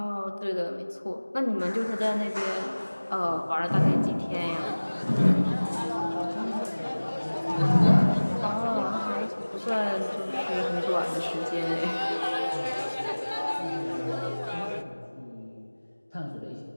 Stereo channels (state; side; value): inverted; both; correlation -1.00